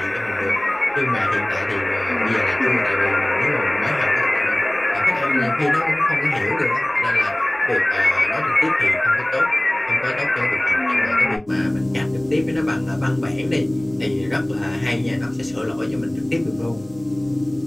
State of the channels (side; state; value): right; noise; hum, 30 dB below the sound